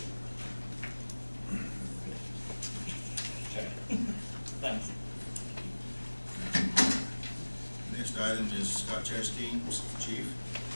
Okay. Thanks. Next item is Scott Chasteen, Chief.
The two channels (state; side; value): inverted; both; correlation -1.00